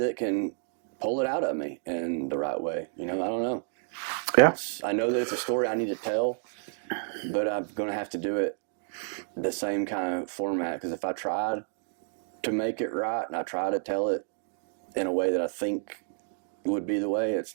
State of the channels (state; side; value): silent; left; digital silence